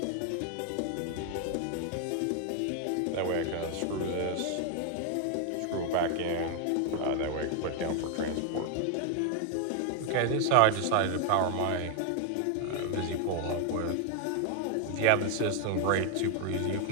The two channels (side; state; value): both; different; correlation 0.00